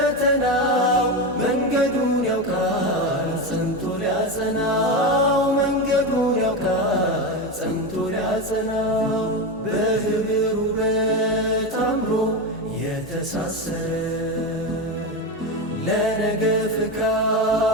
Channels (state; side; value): normal; both; correlation 0.16